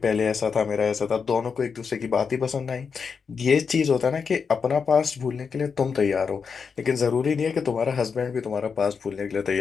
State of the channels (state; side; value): quieter; right; 5.8 dB